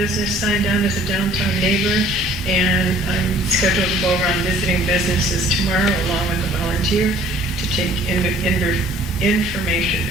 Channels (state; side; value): normal; both; correlation 0.54